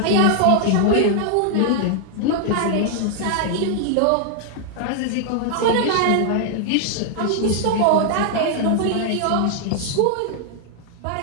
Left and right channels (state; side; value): different; both; correlation 0.00